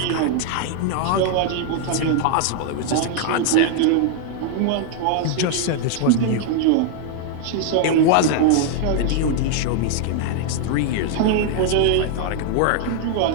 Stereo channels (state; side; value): different; both; correlation 0.00